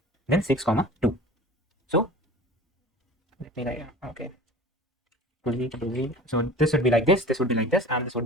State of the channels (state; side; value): normal; both; correlation 0.40